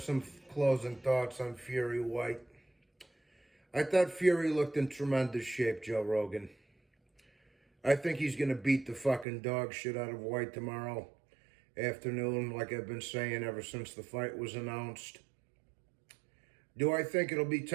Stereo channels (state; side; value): drops out; left; at 9.2 s